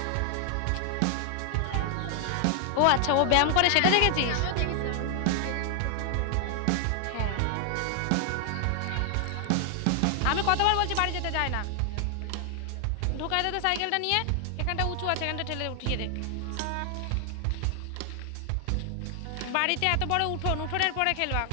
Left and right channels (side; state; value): both; different; correlation 0.00